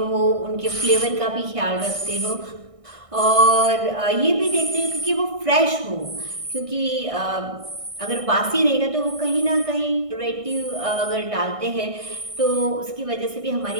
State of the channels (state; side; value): late; left; 1.6 ms